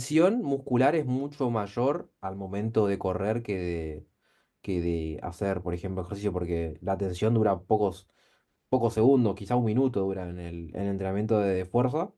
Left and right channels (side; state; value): both; identical; correlation 1.00